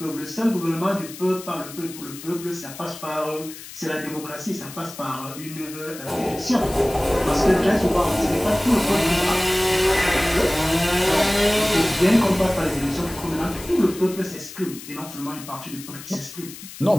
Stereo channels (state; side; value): noise; left; hiss, 14 dB below the sound